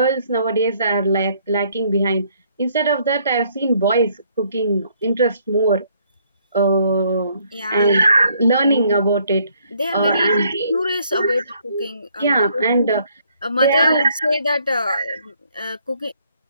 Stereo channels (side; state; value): both; inverted; correlation -0.67